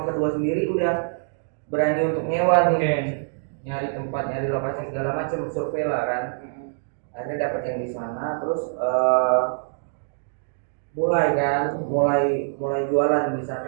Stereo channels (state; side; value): silent; left; digital silence